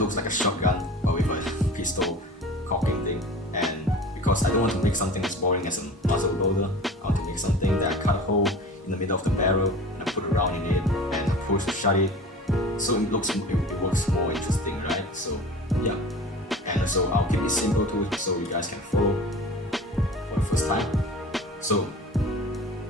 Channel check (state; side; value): normal; both; correlation 0.39